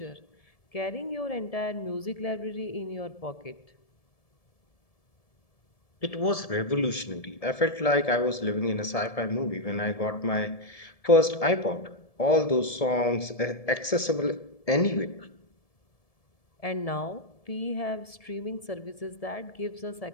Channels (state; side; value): late; right; 1.7 ms